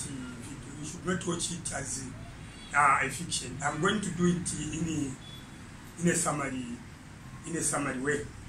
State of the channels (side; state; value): both; identical; correlation 1.00